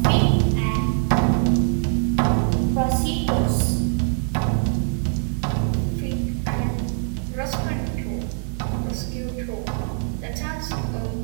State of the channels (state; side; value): silent; left; 59 dB below the other